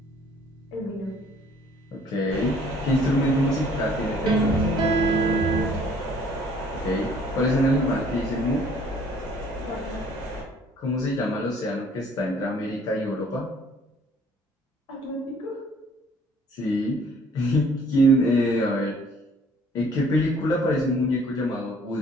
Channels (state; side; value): normal; both; correlation 0.57